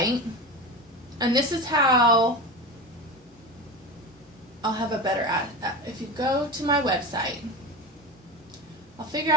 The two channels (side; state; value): both; normal; correlation 0.26